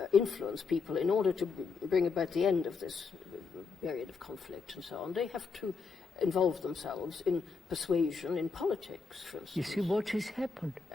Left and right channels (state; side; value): quieter; right; 4.9 dB